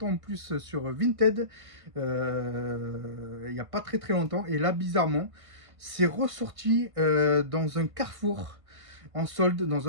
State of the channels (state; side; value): late; left; 1.5 ms